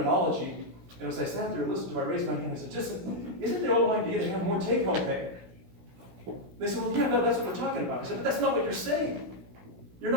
And as I sat there and listened to it, I raised my hand and I said, isn't the whole idea to have more take-home pay? They said, well, yeah, no, that's what we're talking about. I said, but that's not what you're saying.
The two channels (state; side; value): late; left; 16 ms